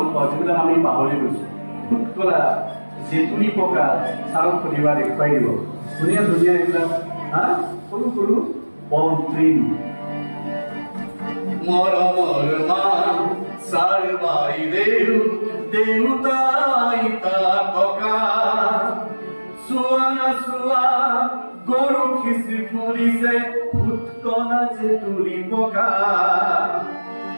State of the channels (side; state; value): both; inverted; correlation -1.00